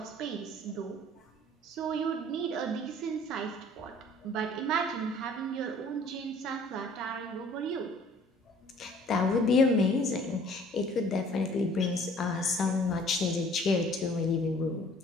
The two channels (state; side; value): normal; both; correlation 0.53